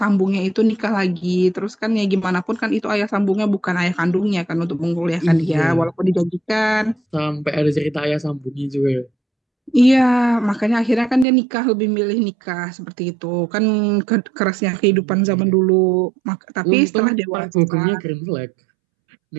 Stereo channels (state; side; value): drops out; left; at 11.2 s